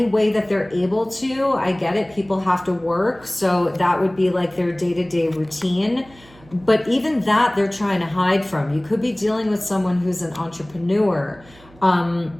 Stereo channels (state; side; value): noise; right; hum, 25 dB below the sound